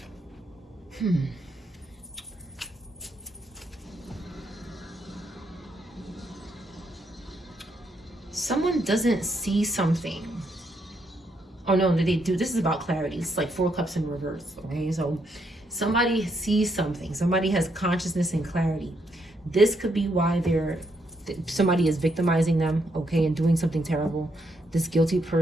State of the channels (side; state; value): both; normal; correlation 0.76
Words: Someone doesn't see something. Oh no, they do. This is about clarity. It's like 4 cups in reverse. Okay, so somebody sees something. Somebody has consciousness and clarity. This could be why somebody is victimizing them, okay, and doing something terrible. This guilty